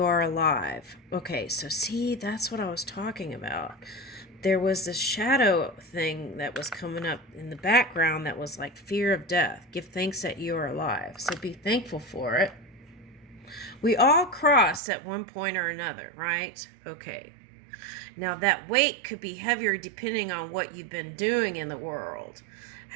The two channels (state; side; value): drops out; left; at 14.8 s